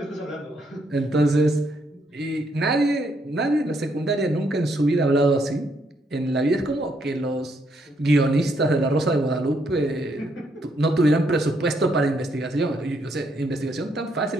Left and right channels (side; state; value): both; normal; correlation 0.74